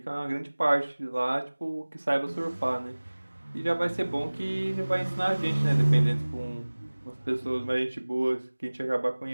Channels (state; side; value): inverted; both; correlation -1.00